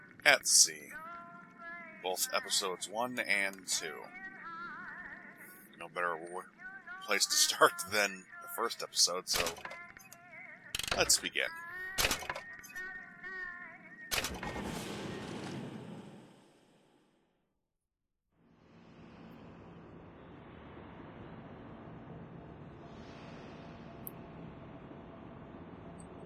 at Sea. Both episodes 1 and 2. No better place to start than the first episode, so let's begin.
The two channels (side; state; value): both; identical; correlation 1.00